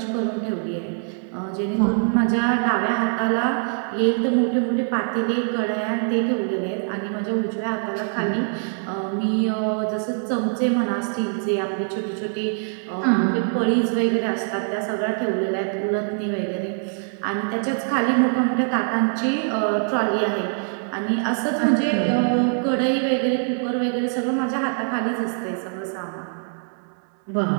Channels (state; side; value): silent; left; 63 dB below the other